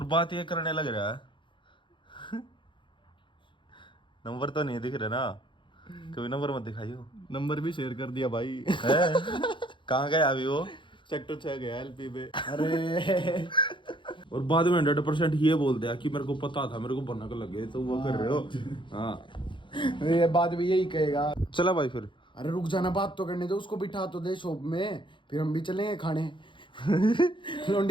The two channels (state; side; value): late; right; 0.24 ms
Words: बात ये करने लग रहा है नंबर तो नहीं दिख रहा ना, कभी नंबर मत दिखाइयो। नंबर भी शेयर कर दिया भाई। है कहाँ गया अभी वो? सेक्टर 6 गया एलपी पे। अरे और बाद में 100% ये बोल दिया कि मेरे को पता था, मेरे को भनक लगे तो वो कर रहे हो। हाँ ये बात भी यही कहेगा। चला भाई फिर। अरे रुक जाना, बात तो करने दो, उसको बिठा तो दे शॉप में, फिर हम भी चलेंगे खाने।